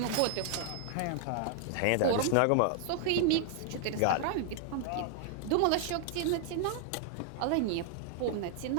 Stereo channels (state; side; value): different; both; correlation 0.00